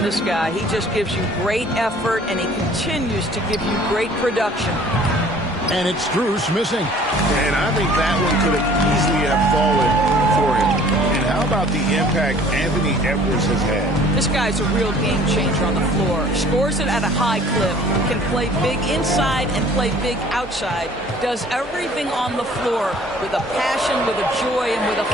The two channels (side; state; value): both; normal; correlation 0.52